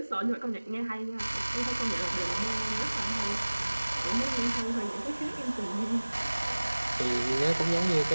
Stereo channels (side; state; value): both; inverted; correlation -1.00